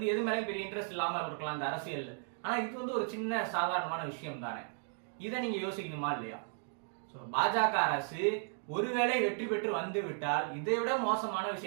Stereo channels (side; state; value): left; silent; 54 dB below the other